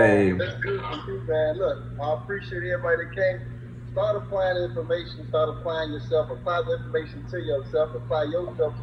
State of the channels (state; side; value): identical; both; correlation 1.00